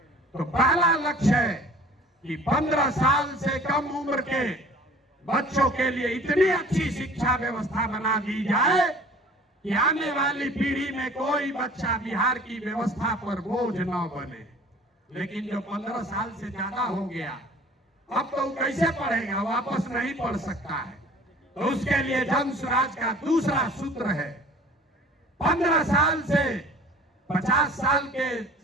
तो पहला लक्ष्य है कि 15 साल से कम उम्र के बच्चों के लिए इतनी अच्छी शिक्षा व्यवस्था बना दी जाए कि आने वाली पीढ़ी में कोई बच्चा बिहार की व्यवस्था पर बोझ न बने। लेकिन जो 15 साल से ज्यादा हो गया, अब तो कैसे पढ़ेगा? वापस नहीं पढ़ सकता है। तो उसके लिए जन स्वराज का दूसरा सूत्र है, 15 साल से 50 साल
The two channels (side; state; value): both; normal; correlation 0.47